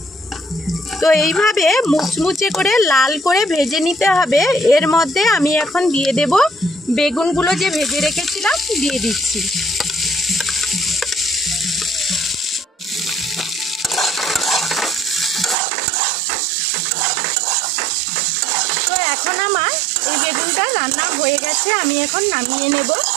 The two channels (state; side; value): drops out; left; at 15.6 s